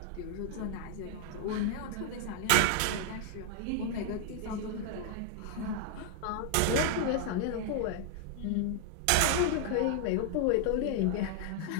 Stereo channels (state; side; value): different; both; correlation 0.00